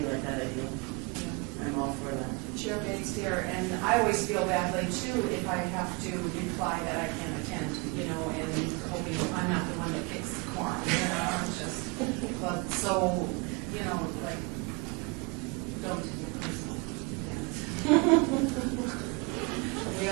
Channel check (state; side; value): quieter; left; 28.7 dB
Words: like that idea. I'm all for that. Chair Bates here, and I always feel badly too if I have to reply that I can't attend, and hoping I'm not the one that kicks the quorum, but so, like, don't take it personal. We